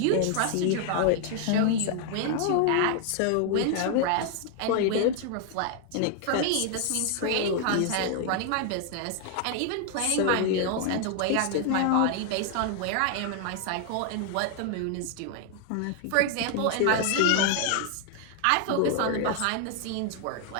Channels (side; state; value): both; different; correlation 0.00